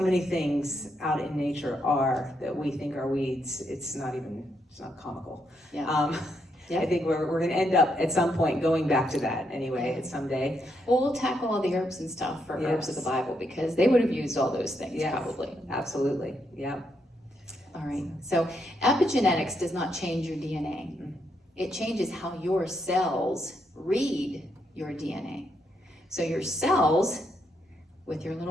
many things out in nature are that we think are weeds. It's not comical. Yeah. Yeah. I think we're going to end up at some point going back to that anyway, someday. Well, we'll tackle all the herbs and stuff for herbs of the Yes. Bible, because they would have used all those things Yes. probably. Absolutely, yeah. All right, so epigenetics does not change your DNA. It changes how your cells read your DNA. So your cells, with your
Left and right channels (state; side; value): normal; both; correlation 0.78